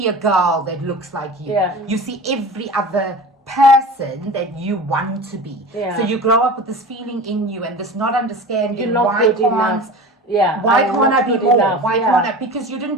a girl that looks like you. You see every other person that you want to be. So you grow up with this feeling in you and this not understanding You're not good enough. Why can't I be more? Why can't I? Because you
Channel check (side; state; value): both; normal; correlation 0.34